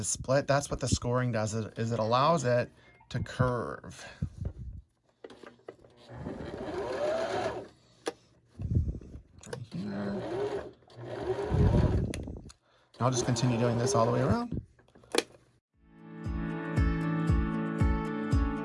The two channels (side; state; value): both; identical; correlation 1.00